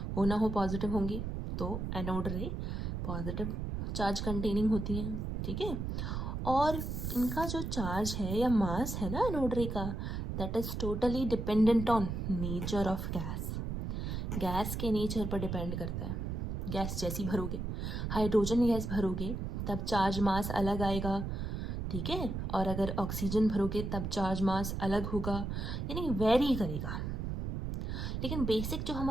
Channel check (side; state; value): right; noise; rumble, 3 dB below the sound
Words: हो ना हो पॉजिटिव होंगी, तो एनोड रे पॉजिटिव चार्ज कंटेनिंग होती हैं, ठीक है। और इनका जो चार्ज है या मास है ना एनोड रे का, that is totally dependent on nature of gas. Gas के नेचर पर डिपेंड करता है। गैस जैसी भरोगे, हाइड्रोजन गैस भरोगे तब चार्ज मास अलग आएगा, ठीक है, और अगर ऑक्सीजन भरोगे तब चार्ज मास अलग होगा, यानी वेरी करेगा। लेकिन बेसिक जो